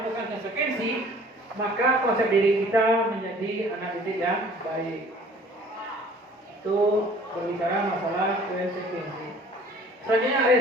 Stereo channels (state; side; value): normal; both; correlation 0.52